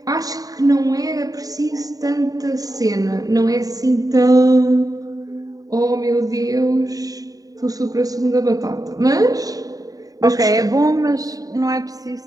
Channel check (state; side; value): late; left; 0.18 ms